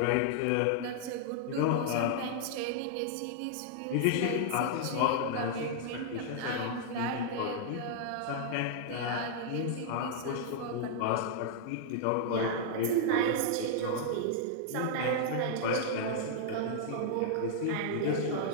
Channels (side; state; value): both; different; correlation -0.01